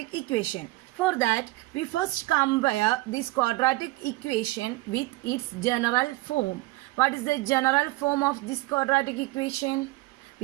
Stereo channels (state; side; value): quieter; left; 20.8 dB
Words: equation. For that, we first compare this quadratic equation with its general form. What is the general form of this quadratic equation?